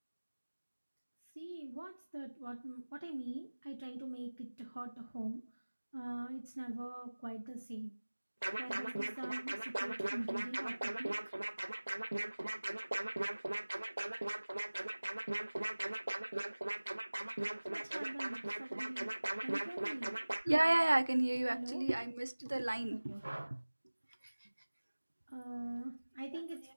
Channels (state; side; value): inverted; both; correlation -1.00